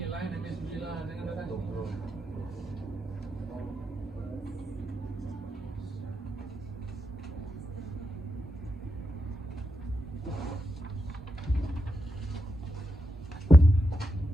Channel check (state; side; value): normal; both; correlation 0.86